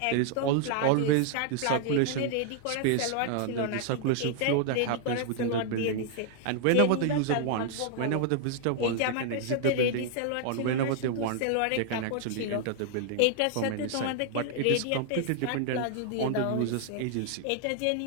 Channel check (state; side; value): different; both; correlation -0.01